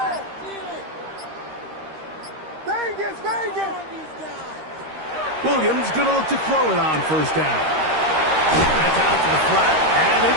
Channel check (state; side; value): late; left; 13 ms